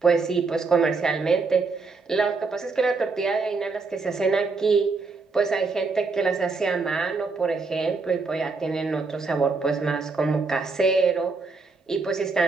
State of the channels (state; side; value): quieter; left; 4.2 dB